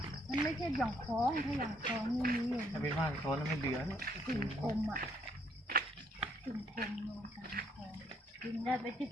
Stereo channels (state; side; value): normal; both; correlation 0.69